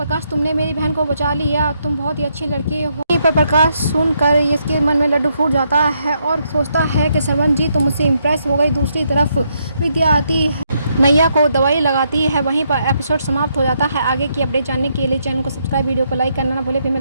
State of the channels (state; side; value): inverted; both; correlation -0.76